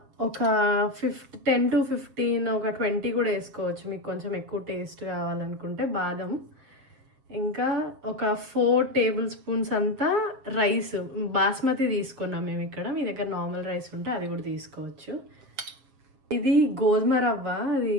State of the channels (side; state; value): left; late; 7.4 ms